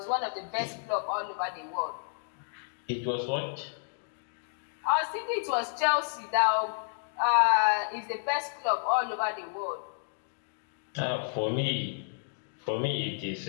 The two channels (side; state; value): right; silent; digital silence